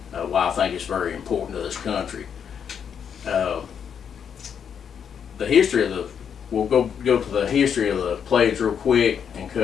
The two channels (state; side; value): quieter; right; 7.7 dB